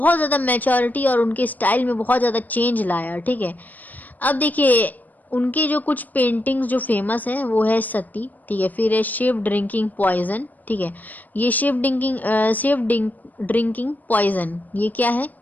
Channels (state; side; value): late; right; 0.082 ms